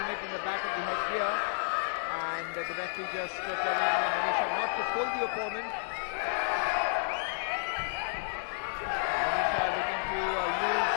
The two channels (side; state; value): right; silent; digital silence